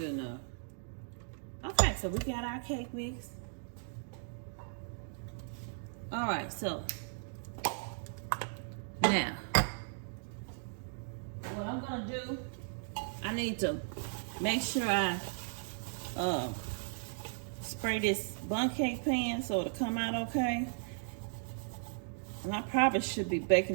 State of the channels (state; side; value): silent; left; digital silence